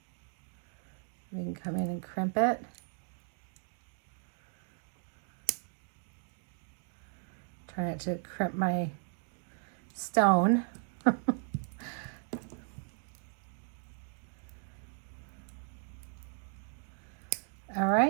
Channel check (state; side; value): silent; left; 54 dB below the other